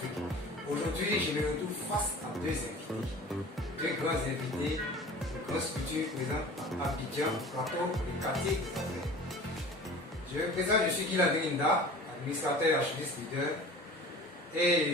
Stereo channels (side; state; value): both; normal; correlation 0.41